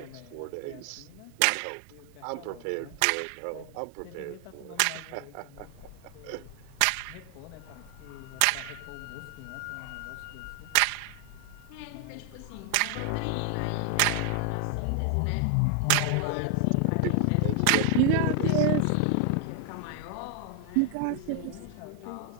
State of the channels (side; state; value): both; different; correlation 0.00